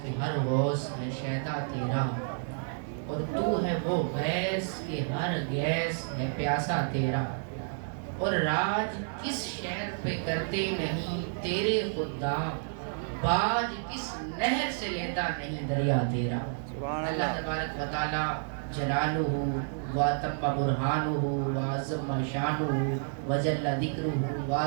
کہ ہر غوث ہے شیدا تیرا، اور تو ہے وہ غیث کہ ہر غیث ہے پیاسا تیرا، اور راج کس شہر پہ کرتے نہیں تیرے خدام، باج کس نہر سے لیتا نہیں دریا تیرا۔ اللہ تبارک و تعالی جلالہ واتم برہانہ وعظم شانہ وجل ذکرہ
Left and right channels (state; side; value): silent; left; digital silence